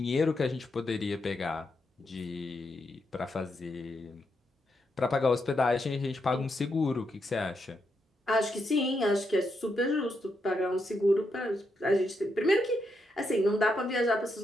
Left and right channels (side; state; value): both; normal; correlation 0.81